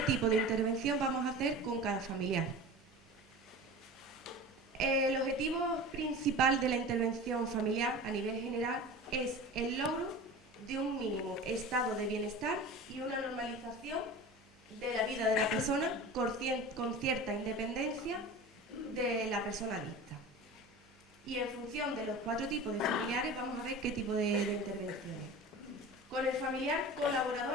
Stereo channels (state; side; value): normal; both; correlation 0.34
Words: tipo de intervención vamos a hacer con cada familiar. El objetivo principal de la intervención familiar a nivel general es el logro de un mínimo estado de bienestar y una normalización de la vida de la persona con cierta independencia de la persona adicta. Y en función de los 4 tipos de familiares vamos a ver qué tipo de intervenciones. Con el familiar